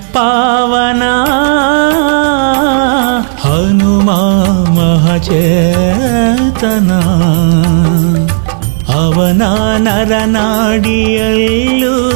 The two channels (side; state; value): left; silent; 67 dB below the other